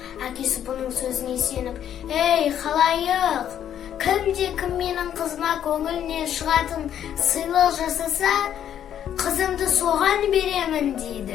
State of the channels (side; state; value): right; quieter; 10.0 dB